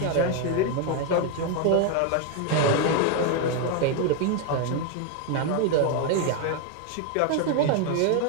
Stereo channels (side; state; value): both; different; correlation 0.01